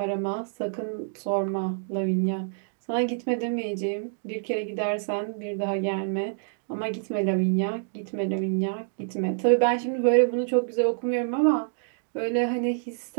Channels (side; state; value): left; silent; digital silence